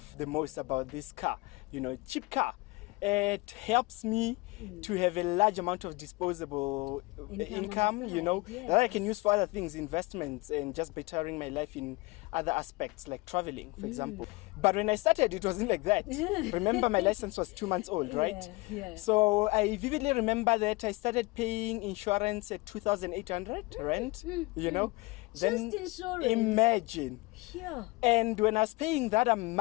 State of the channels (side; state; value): right; quieter; 23.7 dB